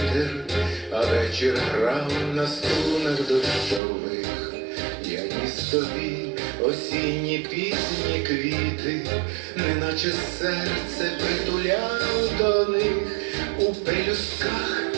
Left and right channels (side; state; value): left; drops out; at 3.8 s